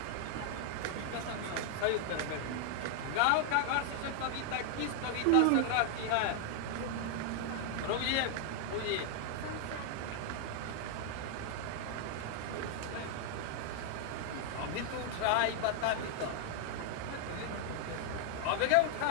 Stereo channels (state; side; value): different; both; correlation 0.00